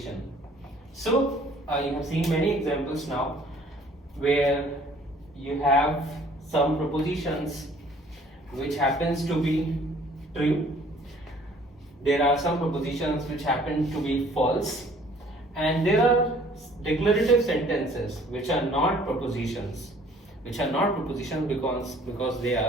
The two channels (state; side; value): normal; both; correlation 0.56